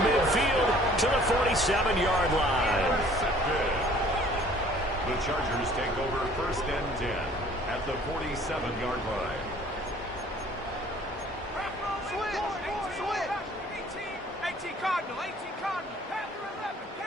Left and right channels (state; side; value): normal; both; correlation 0.54